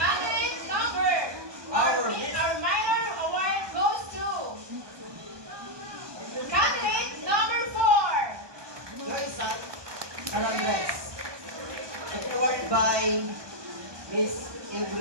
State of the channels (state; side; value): late; left; 1.2 ms